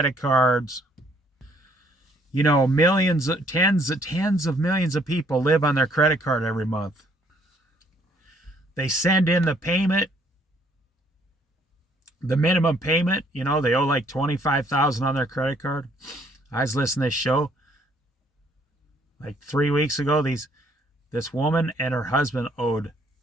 cards. You know, millions, tens of millions of people live on their credit card every month. They send in the payment. The minimum payment, you know, they owe like $25,000 on their credit card. I was listening to this show like 3 weeks ago. This woman and her husband owed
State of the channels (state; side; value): normal; both; correlation 0.65